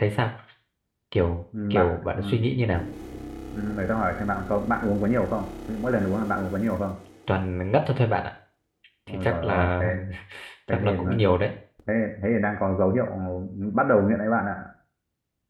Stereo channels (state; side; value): identical; both; correlation 1.00